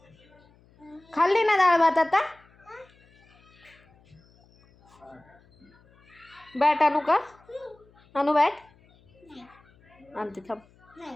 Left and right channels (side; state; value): left; noise; hum, 30 dB below the sound